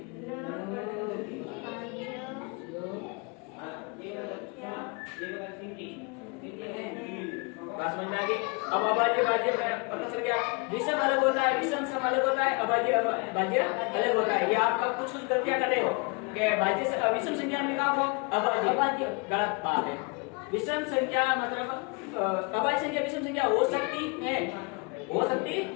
बात समझ में आ गई? अब अभाज्य भाज्य पता चल गया। विषम अलग होता है, विषम सम अलग होता है, अभाज्य भाज्य अलग होता है। ये आप कुछ गलतियां कर रहे हो कि भाज्य से विषम संख्या में कहा हो अभाज्य, गलत बात है। विषम संख्या मतलब अभाज्य संख्या विषम संख्या हो सकती है,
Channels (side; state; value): right; quieter; 30.9 dB